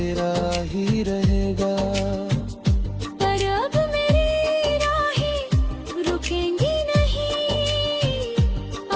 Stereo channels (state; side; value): identical; both; correlation 1.00